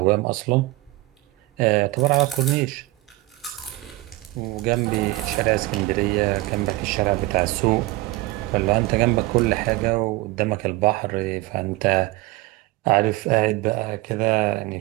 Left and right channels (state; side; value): quieter; left; 19.7 dB